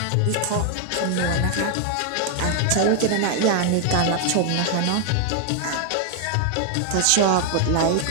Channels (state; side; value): different; both; correlation 0.00